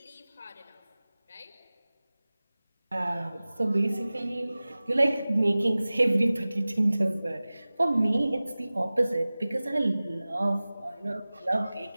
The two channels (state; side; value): inverted; both; correlation -0.98